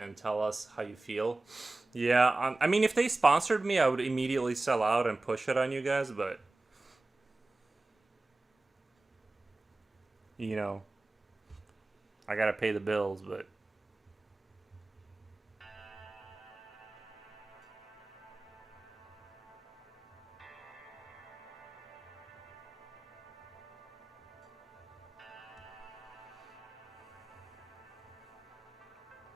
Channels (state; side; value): quieter; left; 3.1 dB